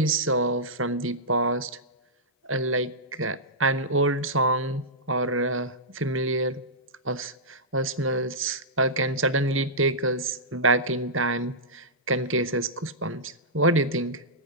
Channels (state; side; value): normal; both; correlation -0.13